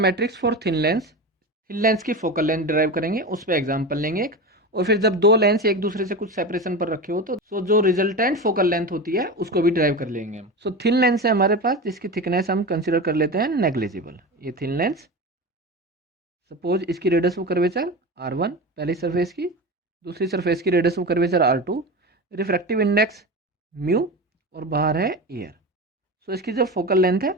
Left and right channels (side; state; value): both; normal; correlation 0.25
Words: for thin lens. Thin lens की focal length derive करेंगे, उस पर example लेंगे एक, और फिर जब दो लेंस एक दूसरे से कुछ सेपरेशन पर रखे हो तो जो रिजल्टेंट फोकल लेंथ होती है उसको भी डिराइव कर लेंगे हम. सो थिन लेंस है हमारे पास जिसकी थिकनेस हम कंसिडर कर लेते हैं नेग्लिजिबल. ये थिन लेंस, सपोज इसकी रेडियस ऑफ कर्वेचर R1 पहली सरफेस की, दूसरी सरफेस की radius of curvature R2, refractive index mu और बाहर है एयर. सो इसकी जो फोकल लेंथ है